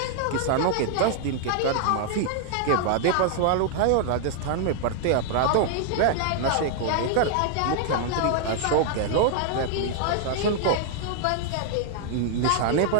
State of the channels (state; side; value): different; both; correlation 0.00